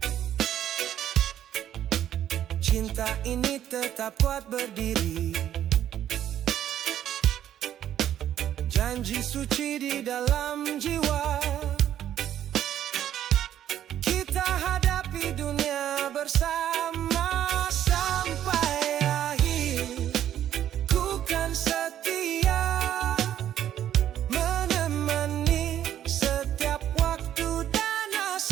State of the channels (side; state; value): left; quieter; 11.0 dB